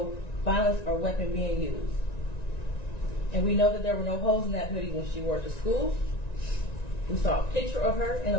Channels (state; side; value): late; right; 1.9 ms